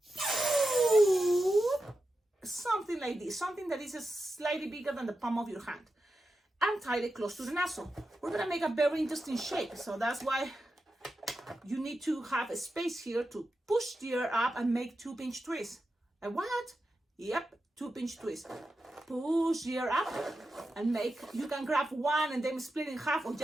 Something like this, something that is slightly bigger than the palm of your hand. And tie it close to the nozzle. We're gonna make a very interesting shape, so that's why you need to have a space here to push the air up and make 2-pinch twists. And what? Yep, 2-pinch twist. Push the air up and make, you can grab one and then split in half or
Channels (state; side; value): normal; both; correlation 0.90